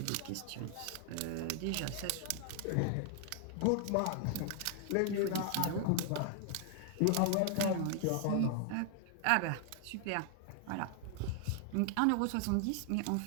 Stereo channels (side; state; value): both; different; correlation 0.00